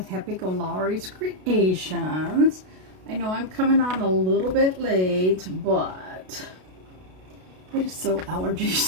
Happy-go-Lowery's Creations. I know I'm coming on a little bit late, but it is so allergy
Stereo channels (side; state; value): left; late; 32 ms